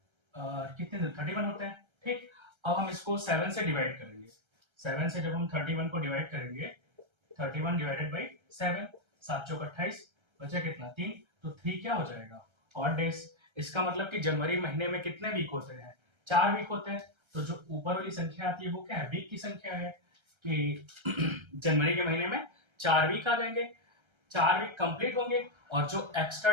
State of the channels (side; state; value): left; late; 1.3 ms